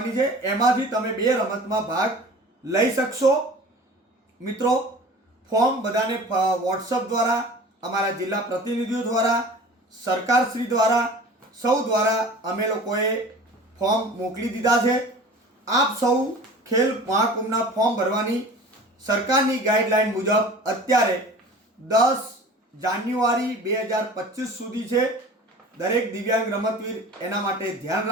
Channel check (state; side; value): normal; both; correlation 0.41